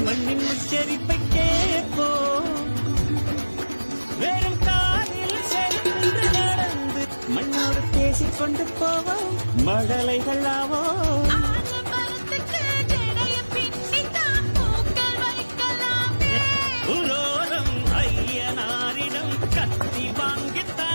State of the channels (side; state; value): both; inverted; correlation -1.00